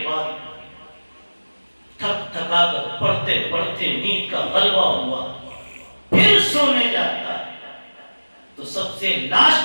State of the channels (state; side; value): inverted; both; correlation -1.00